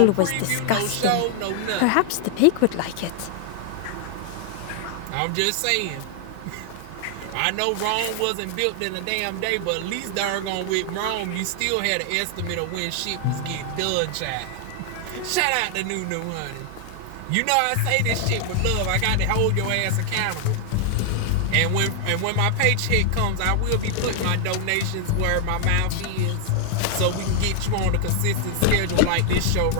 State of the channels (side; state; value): both; different; correlation 0.00